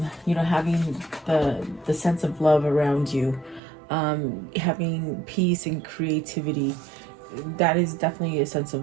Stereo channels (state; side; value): drops out; left; at 3.6 s